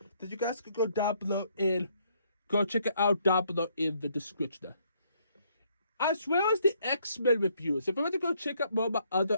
then you guys can go down below and go check it out down below in the description. As well as the X-Men reviews. If I want to go check out more of my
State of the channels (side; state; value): both; inverted; correlation -0.69